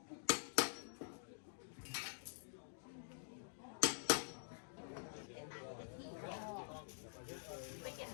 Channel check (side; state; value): right; silent; digital silence